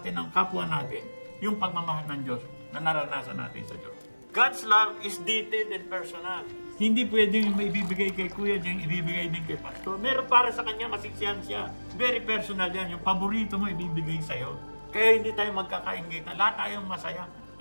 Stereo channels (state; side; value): inverted; both; correlation -1.00